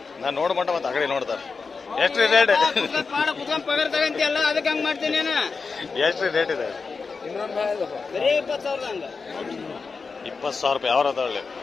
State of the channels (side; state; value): right; quieter; 4.7 dB